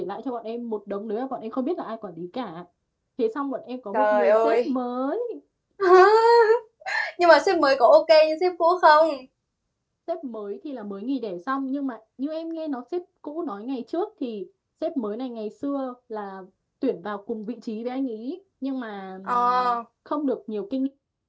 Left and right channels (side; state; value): both; identical; correlation 1.00